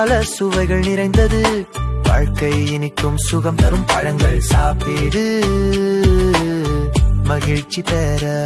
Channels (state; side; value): identical; both; correlation 1.00